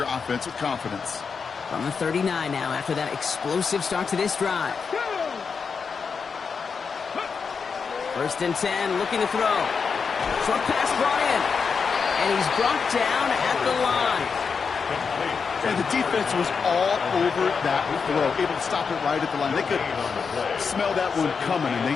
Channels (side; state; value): right; quieter; 5.6 dB